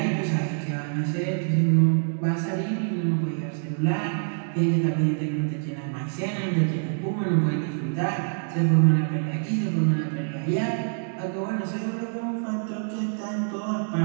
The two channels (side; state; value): left; silent; 61 dB below the other